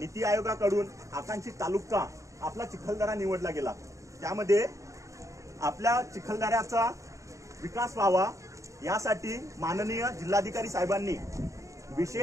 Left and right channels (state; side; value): late; left; 0.15 ms